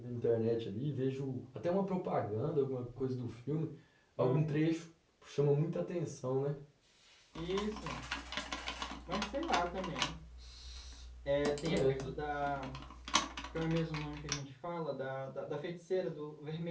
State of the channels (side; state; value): both; identical; correlation 1.00